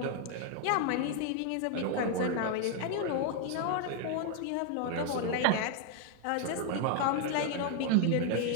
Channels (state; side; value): different; both; correlation 0.00